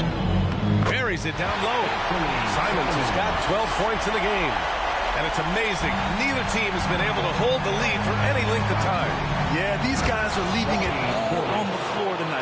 Buries it down low. Simons has got 12 points in the game. And it's amazing. Neither team has been able to hold the lead for any length of time. Yeah, these guys are leaving it all on the floor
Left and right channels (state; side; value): identical; both; correlation 1.00